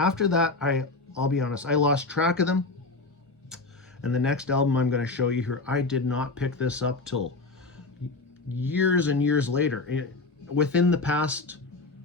that, I'll be honest, I lost track of them. And the next album I'm going to show you here, I did not pick this up till years and years later. Within the past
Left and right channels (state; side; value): quieter; right; 3.6 dB